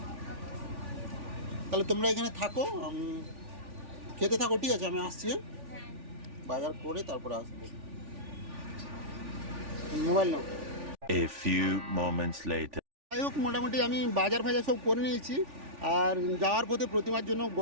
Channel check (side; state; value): left; late; 3.4 ms